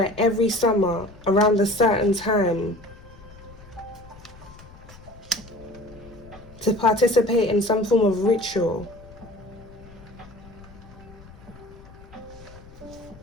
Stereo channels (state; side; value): noise; left; rumble, 20 dB below the sound